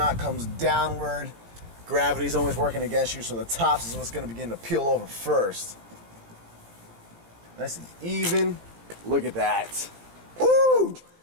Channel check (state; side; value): late; left; 17 ms